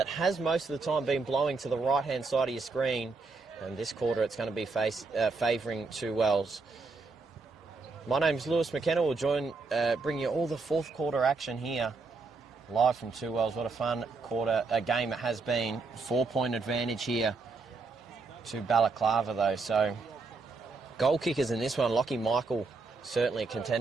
has most of the time been blowing to the right-hand side of your screen. And this quarter it's going to be favouring Two Wells. My name's Lewis McKenna. We'll bring you all the fourth quarter action here, live from Two Wells. What a fun game it has been. 4-point advantage here to Balaklava though. So goal kickers in this one, Lockie Michael, certainly a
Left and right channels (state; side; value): quieter; left; 4.0 dB